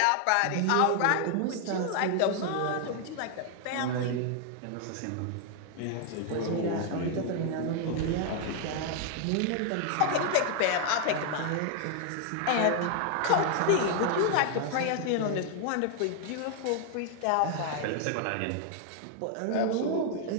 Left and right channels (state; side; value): different; both; correlation 0.00